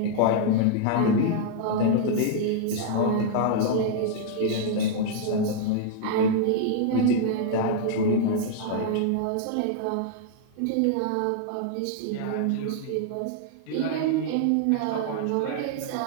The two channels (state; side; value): different; both; correlation -0.01